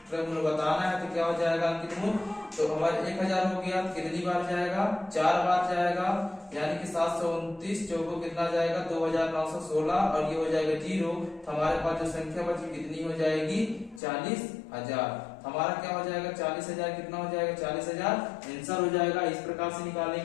मूल्य बताना है, तो क्या हो जाएगा अंकित मूल्य, तो हमारे 1000 हो गया, कितनी बार जाएगा 4 बार जाएगा, यानी कि 729 चौको कितना जाएगा 2,916, और ये हो जाएगा 0, तो हमारे पास जो संख्या बची कितनी हो जाएगी 40,000। हमारा क्या हो जाएगा 40,000, कितना हो जाएगा 40,000 आंसर हो जाएगा। इस प्रकार से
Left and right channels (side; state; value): right; drops out; at 14.0 s